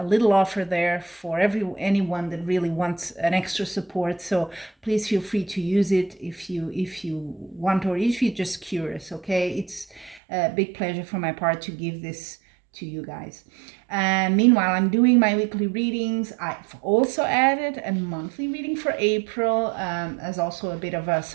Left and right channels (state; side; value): drops out; left; at 10.2 s